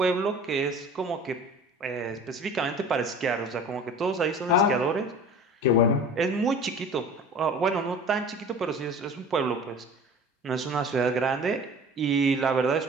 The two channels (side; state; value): both; normal; correlation 0.41